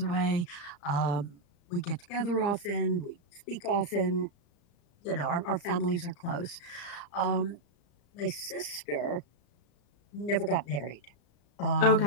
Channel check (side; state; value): right; late; 35 ms